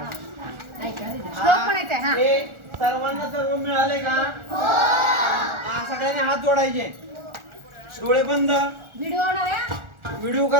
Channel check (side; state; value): left; late; 1.4 ms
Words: श्लोक म्हणायचा आहे, हा. हे सर्वांना सर्व मिळाले का? हा, सगळ्यांनी हात जोडायचे. डोळे बंद. व्हिडिओ होणार आहे. व्हिडिओ